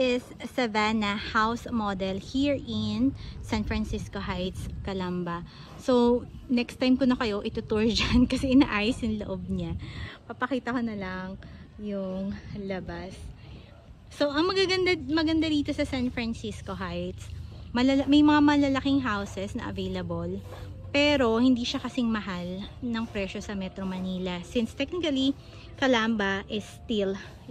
Savannah house model here in San Francisco Heights, Calamba. So, next time ko na kayo itutour dyan kasi inaayos yung loob niya. Papakita ko na lang yung labas. So, ang maganda rito sa San Francisco Heights, may mga malalaking houses na available. Pero, hindi siya kasing mahal ng presyo sa Metro Manila. Since technically, Calamba is still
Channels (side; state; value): both; identical; correlation 1.00